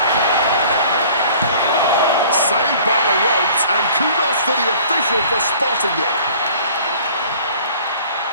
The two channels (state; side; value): inverted; both; correlation -0.50